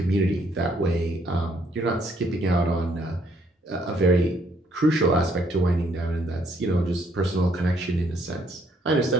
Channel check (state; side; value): normal; both; correlation 0.68